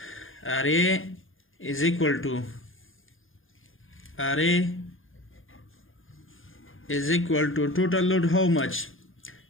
RA is equal to total load how much?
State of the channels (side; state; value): right; late; 0.59 ms